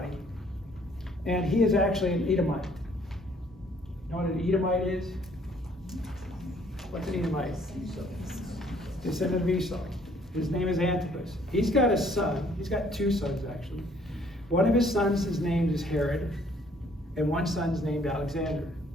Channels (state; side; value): normal; both; correlation 0.62